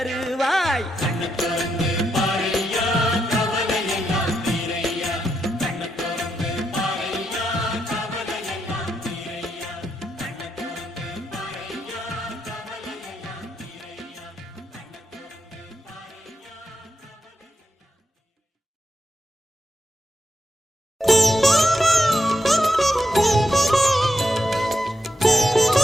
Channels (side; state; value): both; normal; correlation 0.83